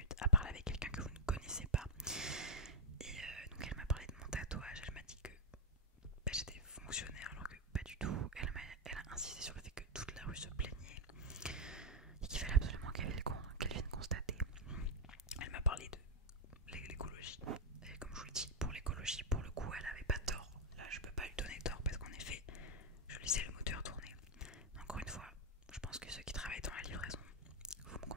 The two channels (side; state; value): both; normal; correlation 0.00